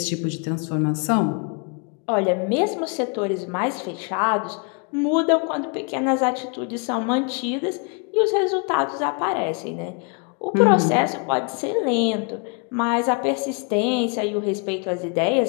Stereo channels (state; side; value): quieter; right; 35.0 dB